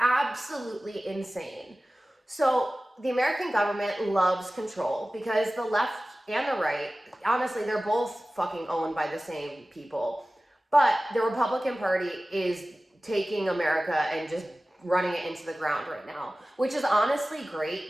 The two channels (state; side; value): normal; both; correlation 0.97